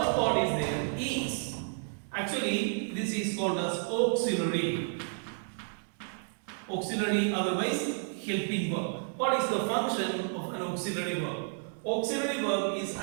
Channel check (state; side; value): silent; left; 57 dB below the other